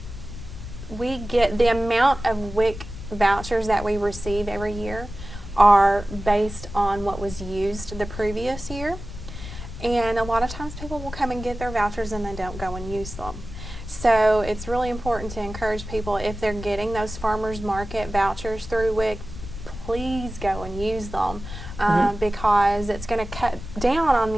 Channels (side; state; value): left; noise; rumble, 11 dB below the sound